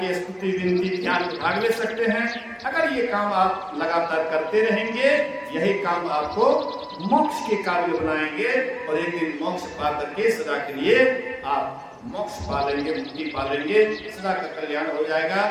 के स्तुति विनती ध्यान में भाग ले सकते हैं। अगर ये काम आप लगातार करते रहेंगे, यही काम आपको मोक्ष के काबिल बनाएंगे, और एक दिन मोक्ष पा करके सदा के लिए आप मोक्ष पा लेंगे, मुक्ति पा लेंगे, सदा का कल्याण हो जाएगा।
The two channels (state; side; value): identical; both; correlation 1.00